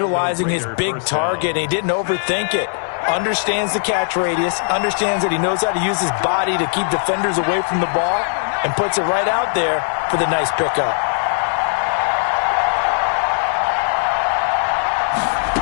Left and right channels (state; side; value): silent; right; 62 dB below the other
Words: his big target. He didn't overthink it. Understands the catch radius. Understands that he knows how to use his body to keep defenders away from the ball. And puts it right out there for the nice pickup.